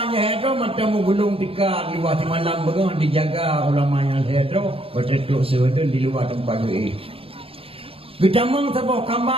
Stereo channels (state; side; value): late; left; 0.27 ms